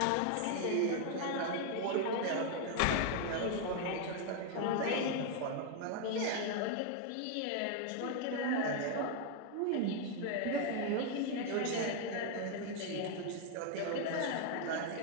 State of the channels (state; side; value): different; both; correlation 0.01